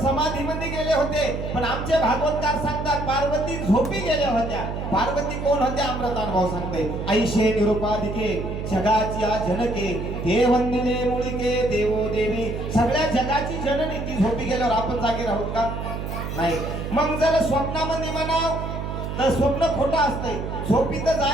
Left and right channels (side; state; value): right; noise; hum, 5 dB below the sound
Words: समाधीमध्ये गेले होते, पण आमचे भागवतकार सांगतात पार्वती झोपी गेल्या होत्या. पार्वती कोण होत्या? अमृतानुभव सांगते. ऐशे निरुपाधिके जगाची जनके ते वंदिले मुळिके देवो देवी. सगळ्या जगाची जननी ती झोपी गेल्यावर आपण जागे राहू का? नाही. मग जर स्वप्नामध्ये म्हणाव तर स्वप्न खोटं असतंय. झोपीत